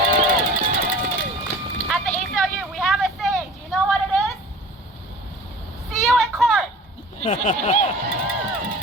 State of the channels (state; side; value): normal; both; correlation 0.42